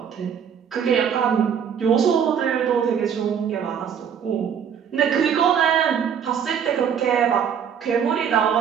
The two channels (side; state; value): left; quieter; 7.9 dB